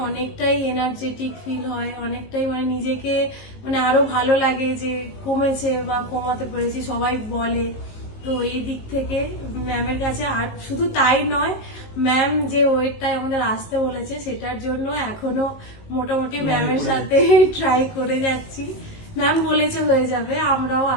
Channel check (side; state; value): right; late; 19 ms